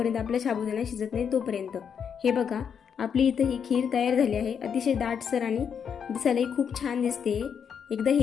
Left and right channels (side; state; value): right; quieter; 7.3 dB